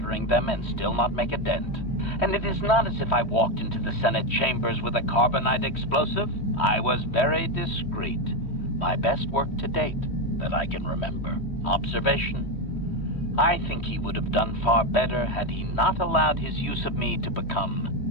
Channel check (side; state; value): right; late; 3.1 ms